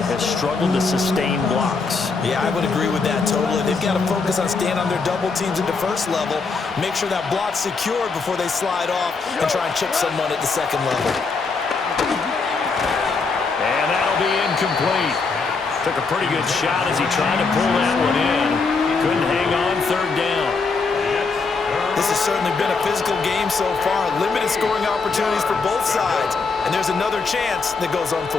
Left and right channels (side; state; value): right; quieter; 4.5 dB